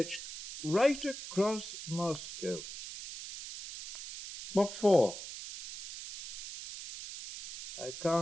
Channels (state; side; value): noise; right; hiss, 9 dB below the sound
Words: right across Moscow. What for? I